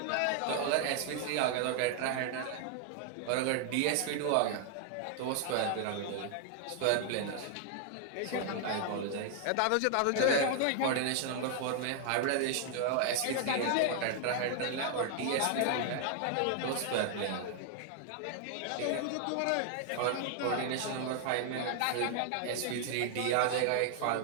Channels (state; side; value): different; both; correlation 0.00